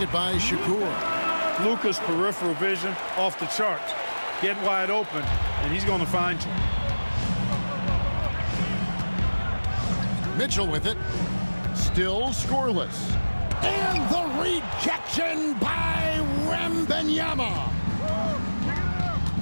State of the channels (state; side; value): inverted; both; correlation -1.00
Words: by Shakur. Luka's peripheral vision off the charts. Get wide open, and he's going to find you. Mitchell with it. Still scoreless. And the rejection by Wembanyama.